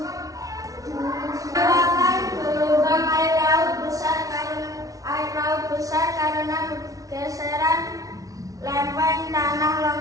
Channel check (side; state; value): left; late; 0.17 ms